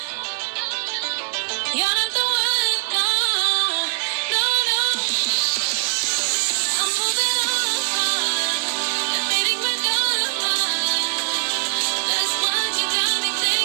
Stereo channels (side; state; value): left; silent; 64 dB below the other